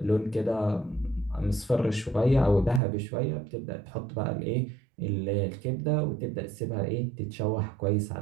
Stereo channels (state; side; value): drops out; left; at 2.8 s